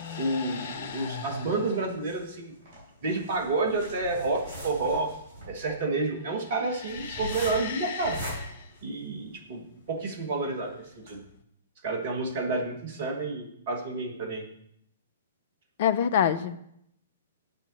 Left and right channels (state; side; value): inverted; both; correlation -0.40